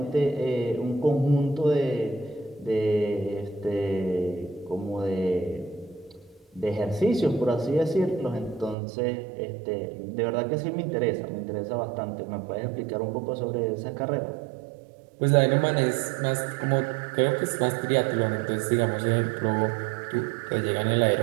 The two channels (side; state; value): left; drops out; at 8.8 s